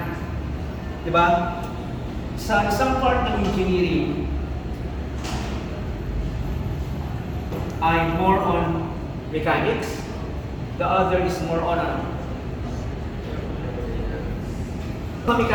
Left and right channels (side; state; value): both; identical; correlation 1.00